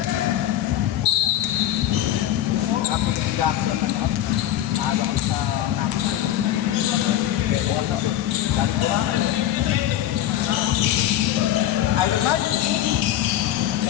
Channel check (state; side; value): quieter; right; 12.2 dB